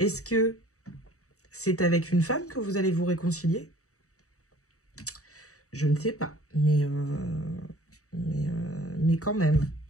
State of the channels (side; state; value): right; late; 0.65 ms